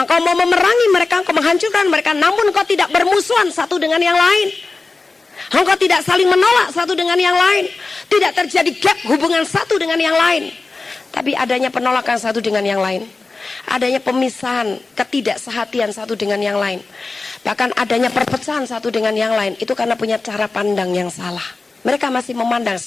mau memerangi mereka, engkau menghancurkan mereka, namun engkau tidak bermusuhan satu dengan yang lain. Engkau tidak saling menolak satu dengan yang lain. Tidak terjadi gap hubungan satu dengan yang lain. Tapi adanya penolakan satu dengan yang lain. Adanya pemisahan, ketidaksehatian satu dengan yang lain. Bahkan adanya perpecahan satu dengan yang lain. Itu karena punya cara pandang yang salah. Mereka masih memandang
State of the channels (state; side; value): quieter; right; 3.8 dB